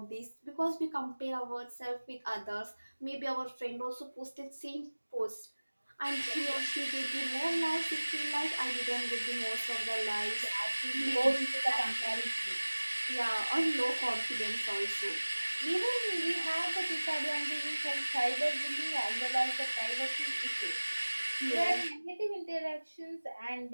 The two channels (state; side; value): inverted; both; correlation -1.00